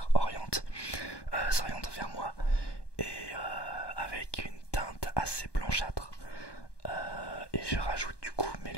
s'orientent vers moi, et avec une teinte assez blanchâtre. Et je rajoute du coup mes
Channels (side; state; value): right; late; 1.2 ms